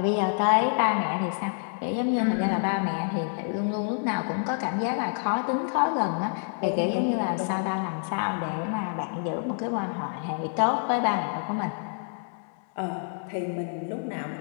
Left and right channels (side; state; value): right; silent; 60 dB below the other